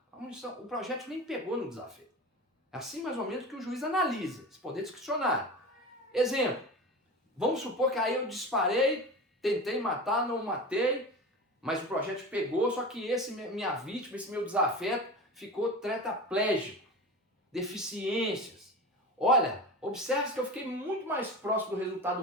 O projeto nem pegou no desafio. É assim mais ou menos que o juiz analisa, esse poder discricionário. Exemplo, Vamos supor que aí eu disparei, tentei matar, não matei, mas o projétil pegou, só que minha vítima, esse meu desafeto, ficou tetraplégico, deficiências. Olha, observe que eu fiquei muito mais próximo do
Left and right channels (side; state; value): both; normal; correlation 0.30